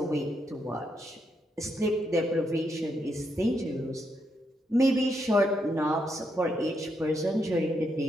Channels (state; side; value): normal; both; correlation 0.79